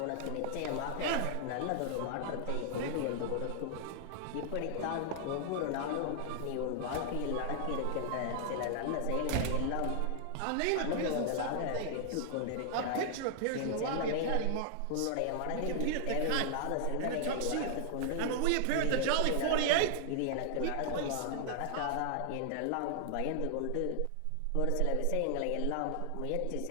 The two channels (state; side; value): different; both; correlation 0.00